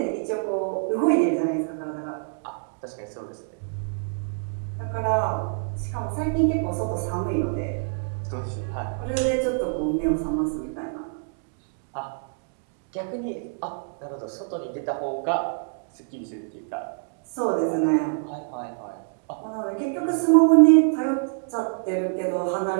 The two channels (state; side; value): silent; left; digital silence